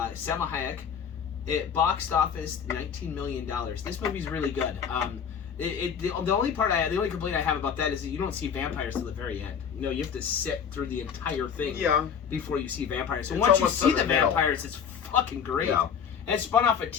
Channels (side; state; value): right; quieter; 7.4 dB